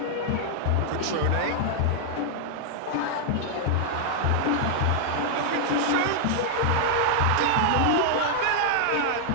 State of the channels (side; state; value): both; different; correlation -0.01